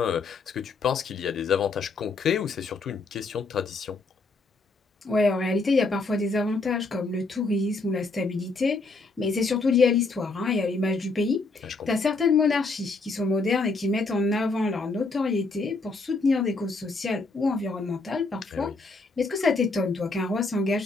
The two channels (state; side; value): quieter; right; 3.7 dB